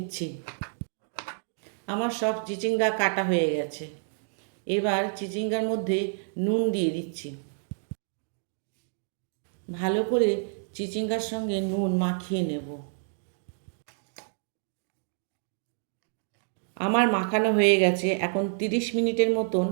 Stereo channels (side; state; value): left; silent; digital silence